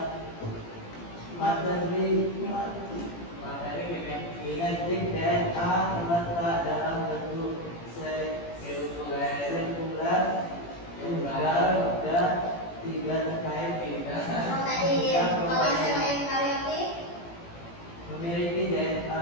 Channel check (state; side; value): late; right; 18 ms